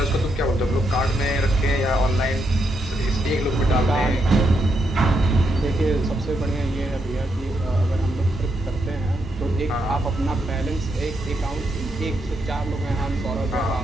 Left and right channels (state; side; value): normal; both; correlation 0.80